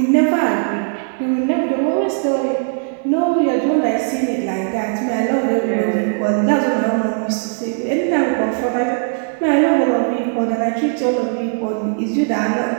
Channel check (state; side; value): silent; left; 67 dB below the other